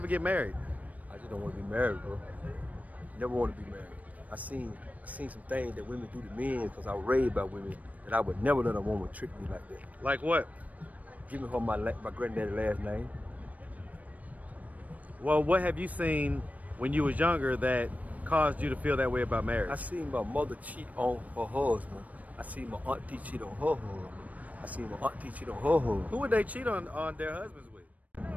get married? I just don't want to be married, bro. Never want to be married. I seen some things that women do to men because I was raised by women that I would never let a woman trick me like that. Like what? Give me her my granddaddy's last name. Well, what have you seen when you was younger that caused you to feel that way about marriage? I seen my mother cheat on her husband. I seen my auntie cheat on her husband. I seen my auntie cheat on her husband. Who would they cheat on their husbands with?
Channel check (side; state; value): left; late; 0.071 ms